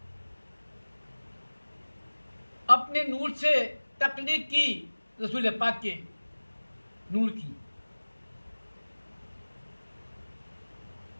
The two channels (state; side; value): inverted; both; correlation -1.00